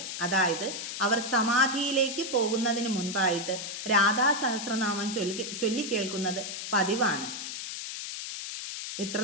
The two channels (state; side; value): noise; left; hiss, 6 dB below the sound